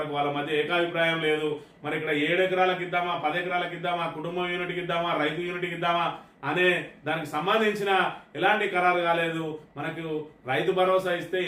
వాళ్ళ మధ్య ఏకాభిప్రాయం లేదు. మరి ఇక్కడ 7 ఎకరాలకు ఇద్దామా, 10 ఎకరాలకు ఇద్దామా, కుటుంబం యూనిట్కి ఇద్దామా, రైతు యూనిట్కి ఇద్దామా అనే దానికి సంబంధించిన ఎలాంటి ఖరారు కాలేదు. మనకు రైతు భరోసా ఇస్తే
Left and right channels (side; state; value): both; identical; correlation 1.00